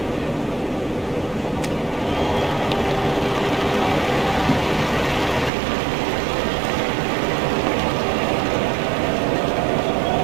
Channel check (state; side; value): drops out; left; at 5.5 s